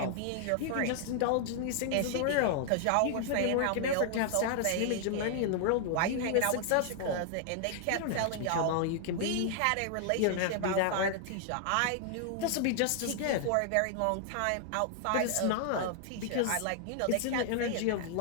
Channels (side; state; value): both; different; correlation 0.00